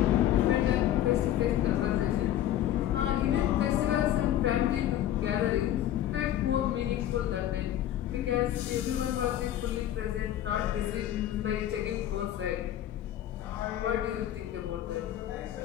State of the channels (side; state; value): right; quieter; 12.1 dB